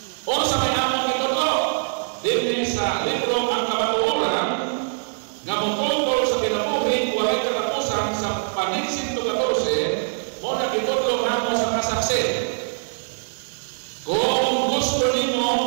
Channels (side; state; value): left; silent; 63 dB below the other